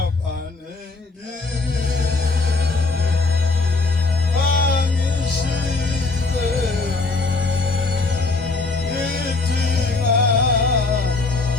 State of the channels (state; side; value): quieter; right; 3.7 dB